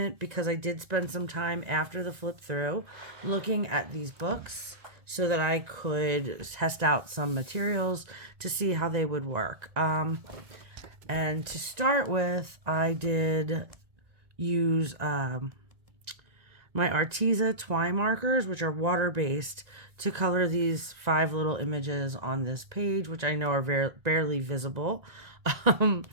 because I did spend some time after the flip through looking at these books so that I could test out some materials to see how they would work. And to start with, I did use my Arteza twine markers, which are water-based, to color these 5 little images on this page, which I know are barely visible.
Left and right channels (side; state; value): left; late; 1.9 ms